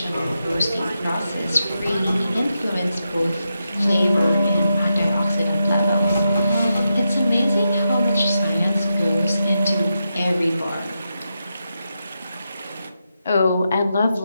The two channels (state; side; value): inverted; both; correlation -0.87